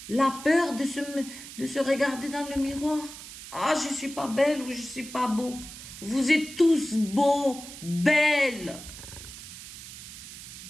La peur de se regarder dans le miroir. Ah, je ne suis pas belle ou je ne suis pas beau. Vous êtes tous beaux, belles.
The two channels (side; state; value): right; noise; hiss, 13 dB below the sound